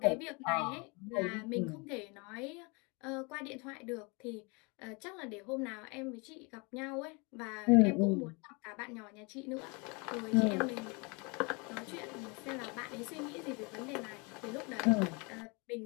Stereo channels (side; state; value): right; quieter; 30.1 dB